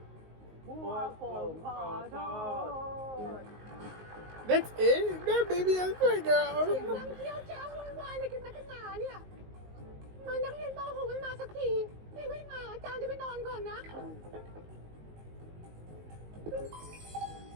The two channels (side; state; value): left; late; 19 ms